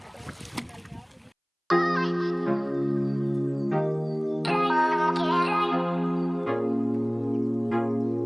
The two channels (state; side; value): identical; both; correlation 1.00